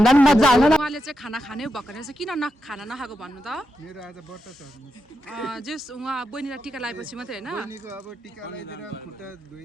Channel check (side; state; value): both; normal; correlation 0.86